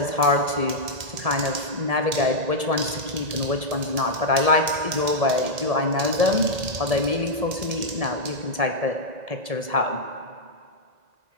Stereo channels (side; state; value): left; late; 2.1 ms